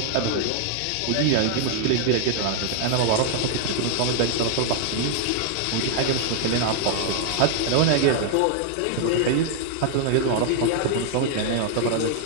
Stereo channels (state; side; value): different; both; correlation 0.00